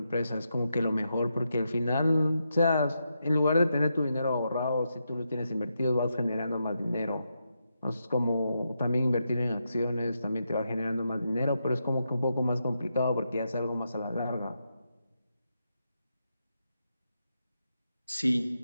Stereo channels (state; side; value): inverted; both; correlation -0.84